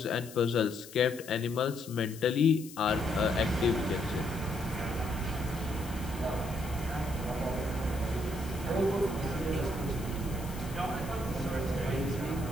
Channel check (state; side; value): noise; left; hiss, 16 dB below the sound